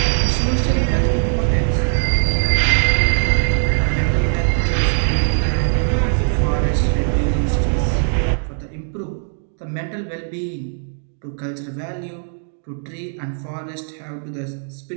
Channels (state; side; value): silent; left; digital silence